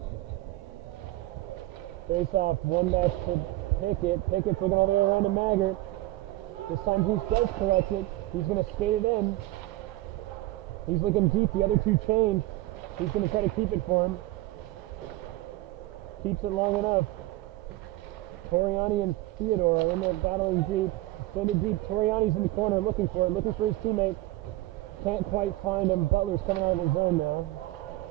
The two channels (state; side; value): quieter; left; 18.0 dB